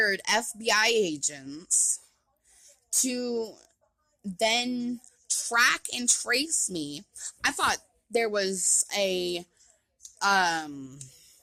FBI agents to then track and trace me. I thought there was I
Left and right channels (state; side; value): identical; both; correlation 1.00